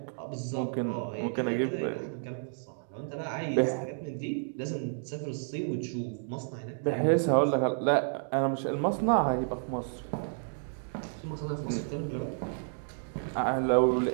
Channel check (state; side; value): silent; left; digital silence